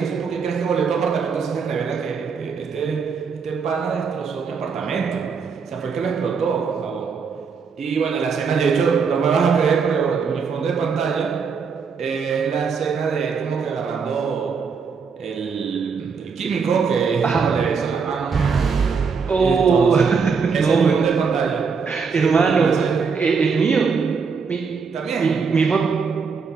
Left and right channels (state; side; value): quieter; left; 5.6 dB